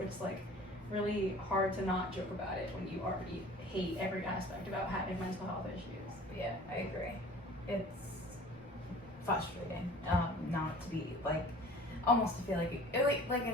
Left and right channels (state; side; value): normal; both; correlation 0.46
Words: like really hard to not joke about it when you already hate every aspect about having mental health issues. Yeah, I agree. It's frustrating not to be like, almost to feel like in at